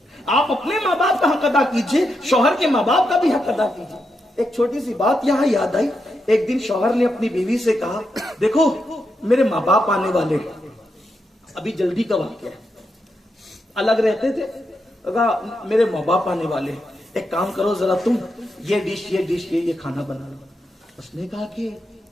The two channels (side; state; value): both; normal; correlation 0.84